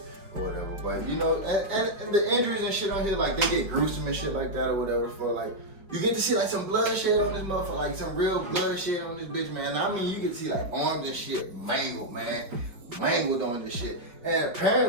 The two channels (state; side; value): late; left; 4.9 ms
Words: or whatever. But and the injuries and shit on here, like they get gruesome and shit like that or whatever. For like, you get to see like some bloodshed on this motherfucker, like some real bloodshed on this bitch, man. I mean, you get to see like arms and shit mangled, man, mangled on this shit. And